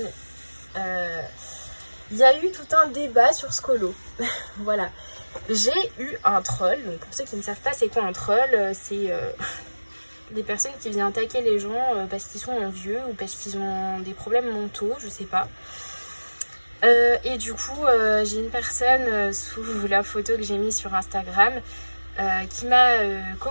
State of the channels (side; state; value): both; inverted; correlation -1.00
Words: il y a eu tout un débat sur ce colo. Voilà. J'ai eu un troll, donc pour ceux qui ne savent pas c'est quoi un troll, c'est des personnes qui viennent attaquer les gens parce qu'ils sont vieux ou parce qu'ils ont des problèmes mentaux, je sais pas. Et du coup, j'ai une personne sous la photo que j'ai mise sur Instagram qui m'a